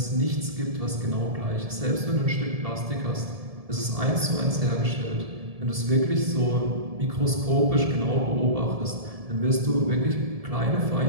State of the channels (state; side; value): late; left; 1.7 ms